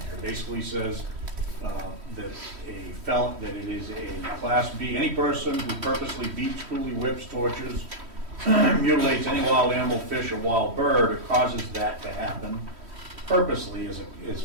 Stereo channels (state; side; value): late; left; 3.1 ms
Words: It basically says that it is a Class B, any person who purposely beats, cruelly whips, tortures, mutilates any wild animal, fish, or wild bird, or causes that to happen purposely